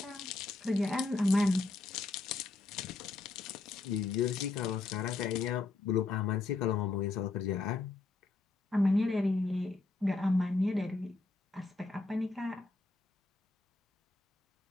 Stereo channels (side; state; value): right; quieter; 3.4 dB